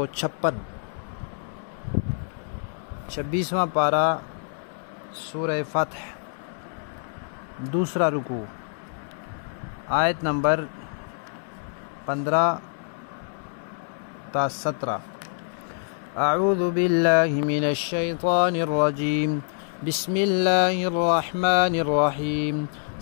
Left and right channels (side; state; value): right; silent; digital silence